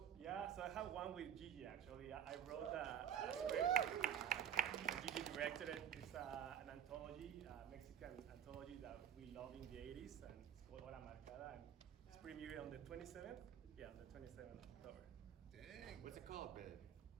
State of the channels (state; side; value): quieter; left; 8.8 dB